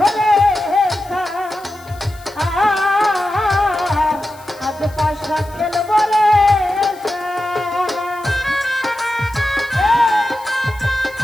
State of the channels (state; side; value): noise; left; hiss, 24 dB below the sound